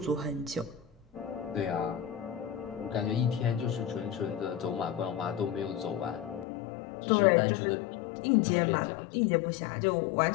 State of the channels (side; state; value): right; drops out; at 6.5 s